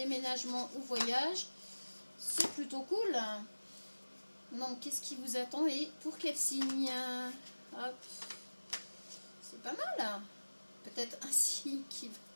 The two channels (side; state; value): both; inverted; correlation -1.00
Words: ou voyage, c'est plutôt cool. Donc, qu'est-ce qui vous attend et pour quel signe? Hop. C'est pas mal. Peut-être un signe qui